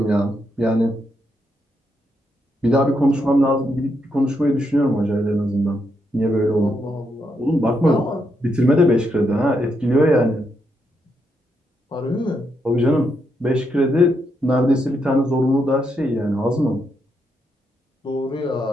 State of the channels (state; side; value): normal; both; correlation 0.80